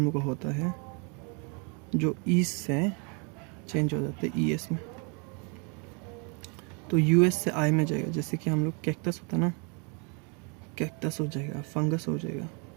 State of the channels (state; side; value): quieter; left; 35.0 dB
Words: लोग का होता है जो ईस्ट से चेंज हो जाते हैं ES में। तो US से I में जाएगा। जैसे कि हम लोग कैक्टस होता है ना, कैक्टस हो जाएगा, फंगस हो जाएगा,